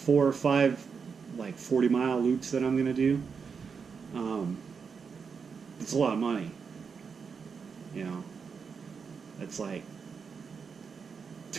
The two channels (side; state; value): left; quieter; 5.8 dB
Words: or five like 40-mile loops that I'm gonna do. It's a lot of money. You know, that's like